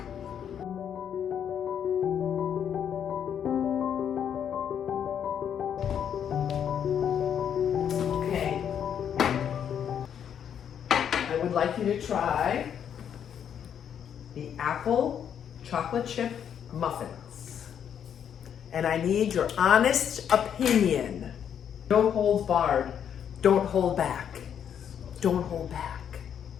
Okay. I would like you to try the apple chocolate chip muffins. And I need your honest opinion. No holds barred. Don't hold back. Don't hold back.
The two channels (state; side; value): quieter; right; 8.7 dB